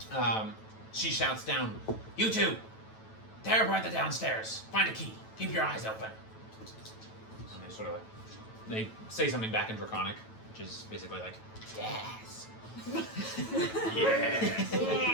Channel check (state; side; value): late; right; 9.1 ms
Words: she shouts down, "You two! Tear apart the downstairs. Find a key. Keep your eyes open." And they sort of they say something back in Draconic, which is basically like, "Yes." Yes.